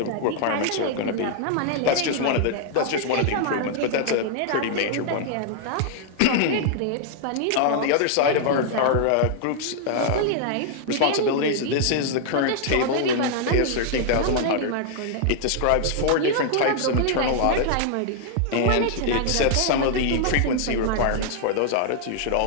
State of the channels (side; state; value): both; different; correlation -0.01